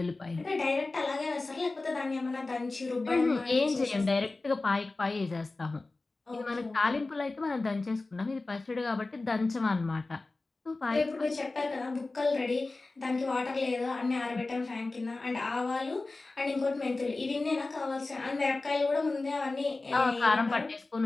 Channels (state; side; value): quieter; right; 3.3 dB